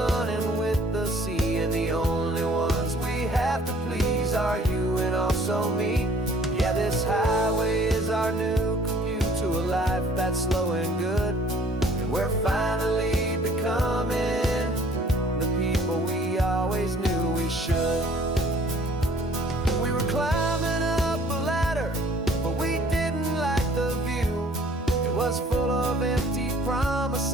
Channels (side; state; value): both; normal; correlation 0.56